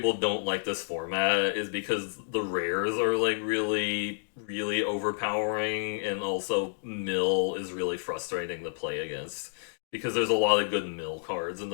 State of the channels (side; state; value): right; silent; digital silence